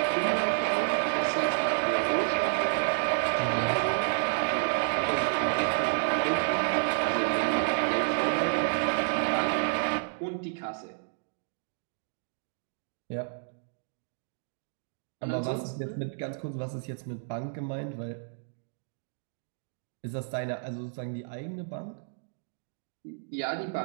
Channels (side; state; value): left; silent; digital silence